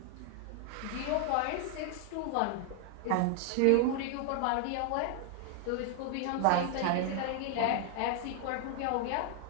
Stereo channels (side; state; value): both; different; correlation 0.00